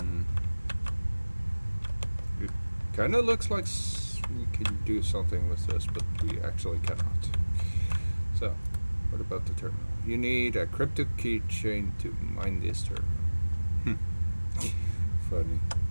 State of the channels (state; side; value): inverted; both; correlation -1.00